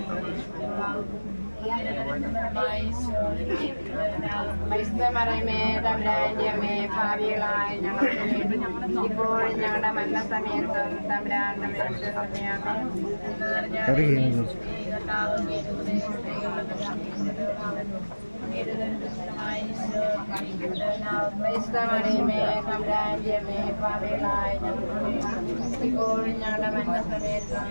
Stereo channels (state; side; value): inverted; both; correlation -1.00